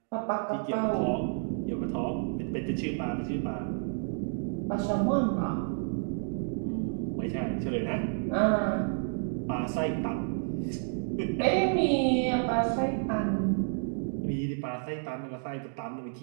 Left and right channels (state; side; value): silent; left; 58 dB below the other